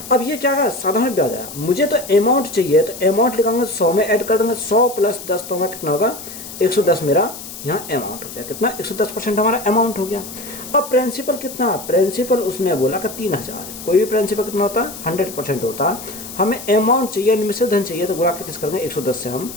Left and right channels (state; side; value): noise; left; hiss, 12 dB below the sound